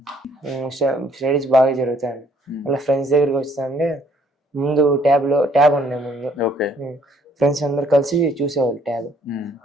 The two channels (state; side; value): normal; both; correlation 0.63